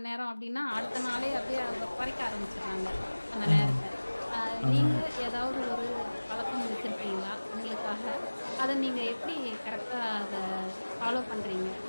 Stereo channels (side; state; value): both; inverted; correlation -1.00